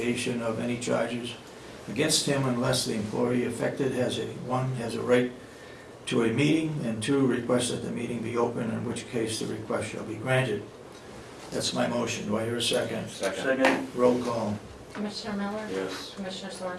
of any charges against him unless the employee affected has a right to a meeting, and 2, requests that the meeting be open, in which case the request shall be granted. That's my motion. Do I hear a second? Second? Roll call. Commissioner Miller? Yes. Commissioner Sorensen?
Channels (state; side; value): identical; both; correlation 1.00